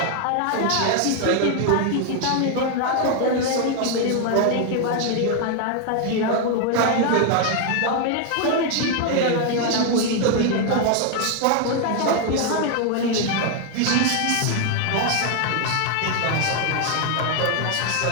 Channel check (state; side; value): different; both; correlation 0.00